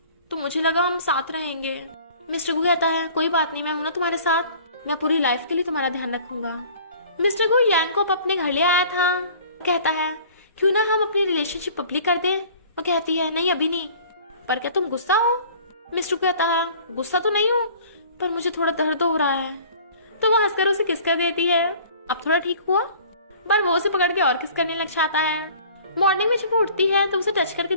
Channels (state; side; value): inverted; both; correlation -0.49